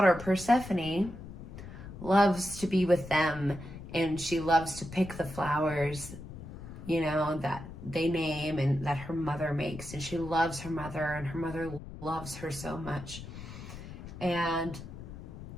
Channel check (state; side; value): noise; left; rumble, 12 dB below the sound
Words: Persephone loves to be with them, and she loves to pick the flowers, that they name and that her mother makes. And she loves her mother, and her mother loves her so much. And